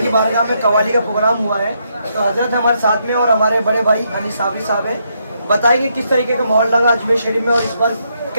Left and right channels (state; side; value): inverted; both; correlation -0.77